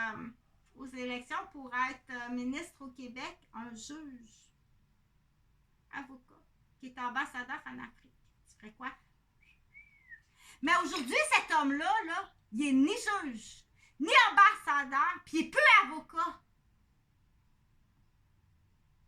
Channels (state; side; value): identical; both; correlation 1.00